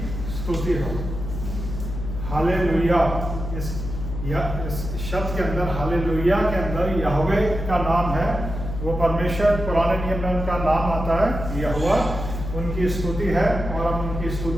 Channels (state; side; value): noise; left; hum, 6 dB below the sound